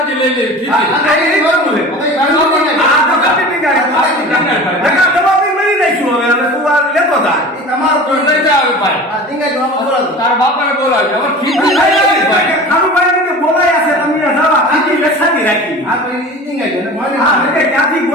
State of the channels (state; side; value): normal; both; correlation 0.37